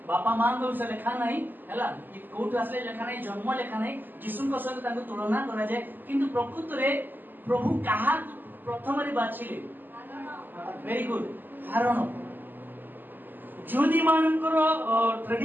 बापा मां को विषय लिखा नहीं हैला, कोट असले लिखा नहीं, जन्म लिखा नहीं, यीशु को सहित तांको तुलना करा जाय, किंतु प्रकृत रे प्रभु कहा प्रथम रे बाछिले. Very good. हारण ज्योति मानकर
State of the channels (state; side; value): late; left; 0.089 ms